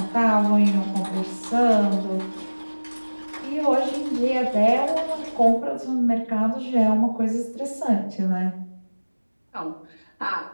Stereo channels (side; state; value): both; inverted; correlation -1.00